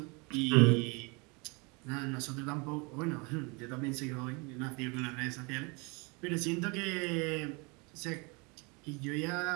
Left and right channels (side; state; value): left; quieter; 29.5 dB